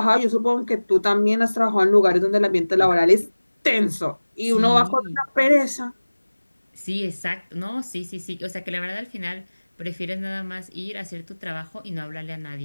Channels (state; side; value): inverted; both; correlation -1.00